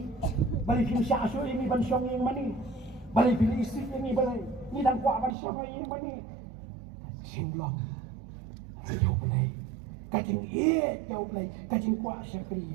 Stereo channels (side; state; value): left; drops out; at 5.4 s